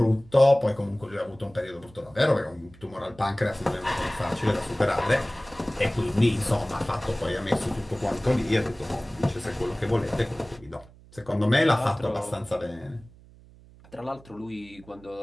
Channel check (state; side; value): noise; right; hum, 23 dB below the sound